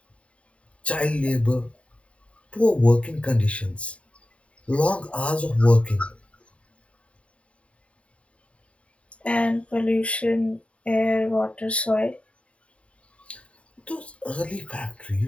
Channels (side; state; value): right; late; 0.063 ms